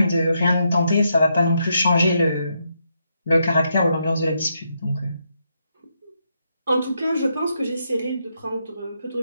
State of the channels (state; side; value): inverted; both; correlation -0.79